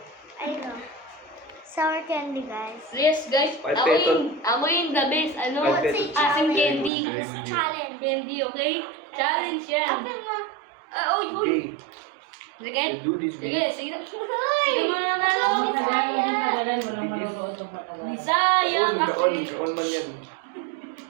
Ayun o. Sour candy guys. Yes guys, Ay, amoyin the best. Ano? Ay, Say Aking challenge. candy. Very good. Challenge. Candy, okay? Challenge yan. Open mo. Uy, uy. Okay, Sige. you do this, Sige, babe. sige. Sige mga nalo. Hindi talaga, walang maluto itong matagal. Sayang Kaon kasi. man yan.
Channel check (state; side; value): drops out; left; at 6.9 s